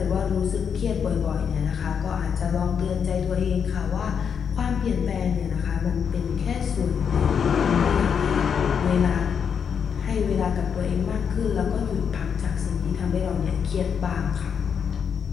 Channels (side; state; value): right; quieter; 7.1 dB